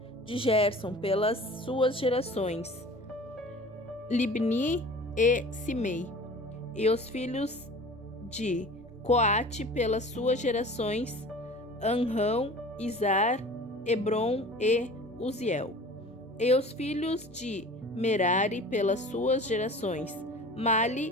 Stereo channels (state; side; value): normal; both; correlation 0.42